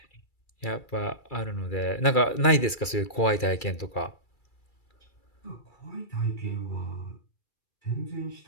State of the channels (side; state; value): right; late; 2.3 ms